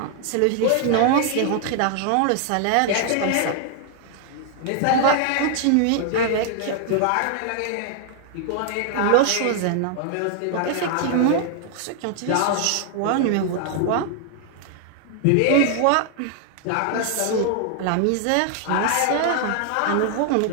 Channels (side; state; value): both; different; correlation 0.00